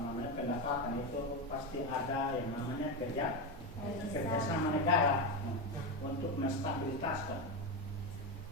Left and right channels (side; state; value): both; normal; correlation 0.14